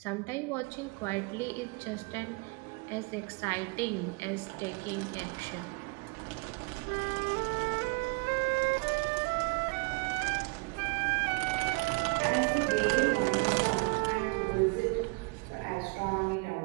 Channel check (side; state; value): left; quieter; 30.4 dB